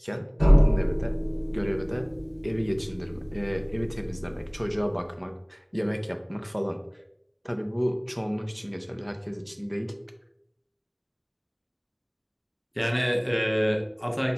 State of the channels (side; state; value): both; identical; correlation 1.00